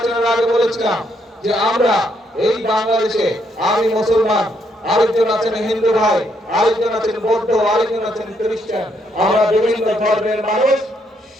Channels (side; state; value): both; normal; correlation 0.74